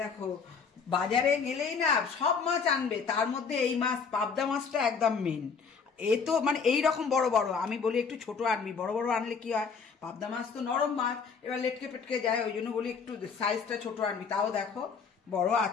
দেখো বাজারে গেলেই না সব মাছ আনবে, তার মধ্যে এই মাছ পাবদা মাছটা একদম মেন। এ তো মানে এইরকম বড় বড়, আমি বলি একটু ছোট আনবি, বড় বড় আনলে কি হয়, পাবদা মাছ তো নরম মাছ, এবার লেটকে পেটকে যায়, ওই জন্য বলি একটু সাইজটা ছোট আনবি। তাও দেখো বড়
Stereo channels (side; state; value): right; quieter; 5.7 dB